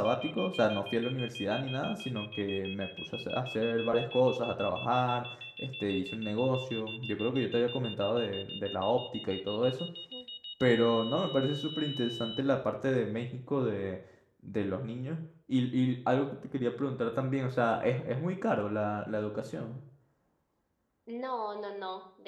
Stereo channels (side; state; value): both; identical; correlation 1.00